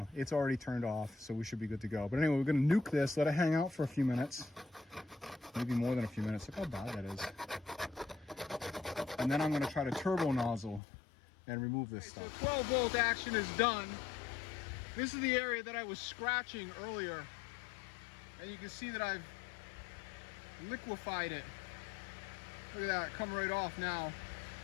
it's already turned off, so we should be good to go. But anyway, we're going to nuke this, let it hang out for a few minutes, maybe more than a few minutes. Look how bad that is. And then I'm going to try to turbo nozzle and remove this stuff. So 12 volt action is done. This is the area that I was scratching earlier, and you can see that I've liquefied it. Look at that, come right off now.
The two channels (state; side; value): drops out; right; at 10.8 s